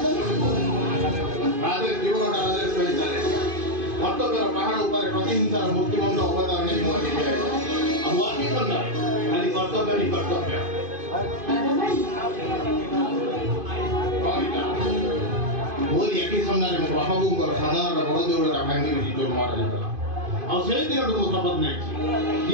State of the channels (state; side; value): late; left; 2.5 ms